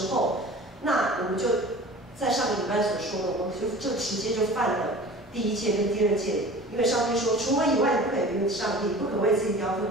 候，那我们就在上个礼拜所说的，我们就直接就犯了第1戒跟第2戒，因为上帝说，除我以外，你不可以别有上帝，不可为自己雕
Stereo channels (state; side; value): normal; both; correlation 0.41